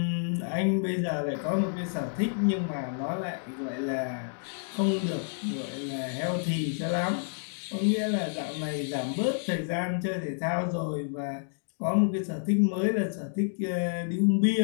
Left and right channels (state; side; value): silent; right; digital silence